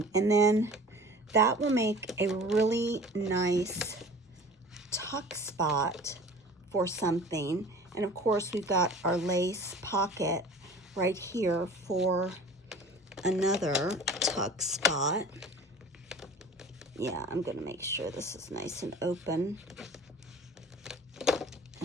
And then that will make a really nice tuck spot for something. And of course, we've got our lace pocket right here for another tuck spot. Yeah, I'm gonna make sure this is nice and open.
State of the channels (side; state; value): both; normal; correlation 0.43